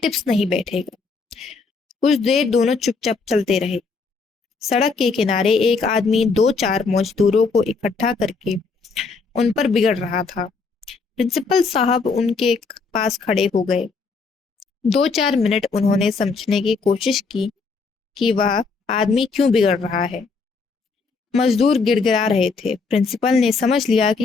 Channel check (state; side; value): quieter; right; 4.5 dB